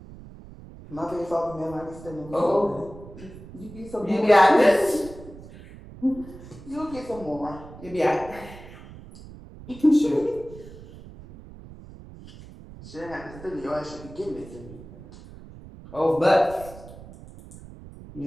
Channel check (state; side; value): noise; right; rumble, 17 dB below the sound